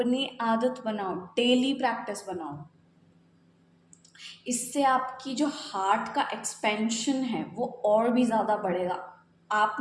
आदत बनाओ, डेली प्रैक्टिस बनाओ। इससे आपकी जो हार्ट का एक्सपेंशन है वो और भी ज़्यादा बढ़ेगा। आप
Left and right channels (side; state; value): both; identical; correlation 1.00